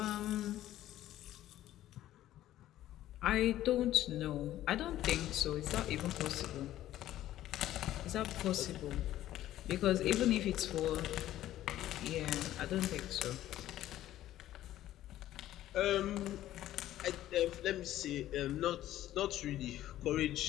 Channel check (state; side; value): quieter; right; 13.6 dB